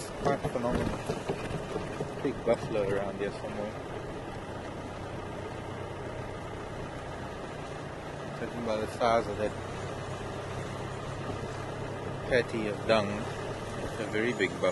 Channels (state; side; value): identical; both; correlation 1.00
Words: quite phenomenal. Big buffalo around here somewhere. Judging by the size of that patty of dung, it's a very big